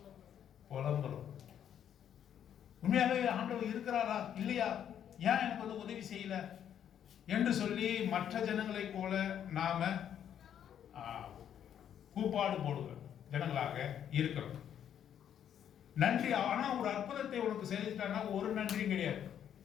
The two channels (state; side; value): quieter; right; 9.5 dB